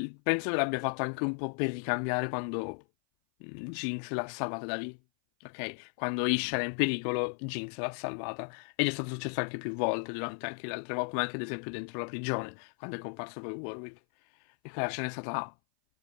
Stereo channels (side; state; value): right; silent; 55 dB below the other